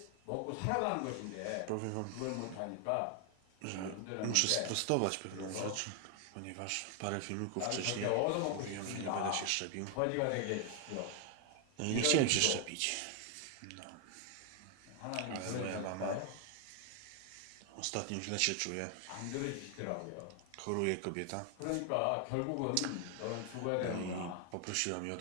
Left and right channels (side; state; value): both; different; correlation 0.00